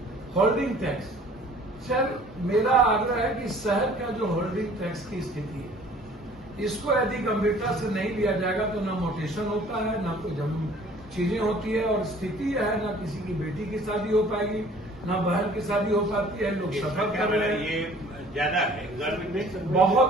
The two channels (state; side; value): normal; both; correlation 0.52